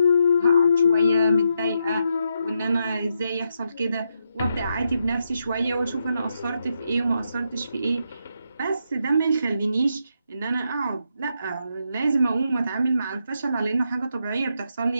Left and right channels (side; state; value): both; inverted; correlation -0.81